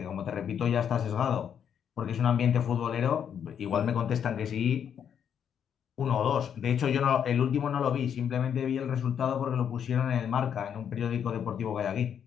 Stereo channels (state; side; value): quieter; right; 8.3 dB